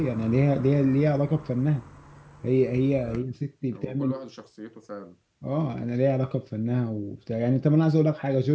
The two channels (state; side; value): identical; both; correlation 1.00